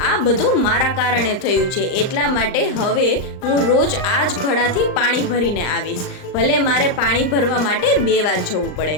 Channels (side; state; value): right; late; 39 ms